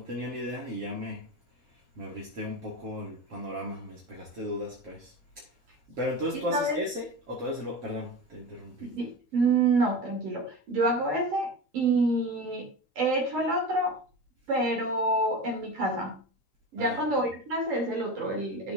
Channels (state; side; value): late; left; 3.8 ms